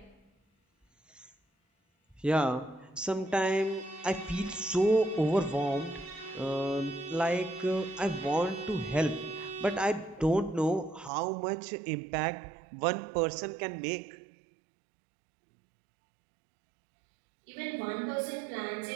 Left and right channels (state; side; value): drops out; left; at 11.1 s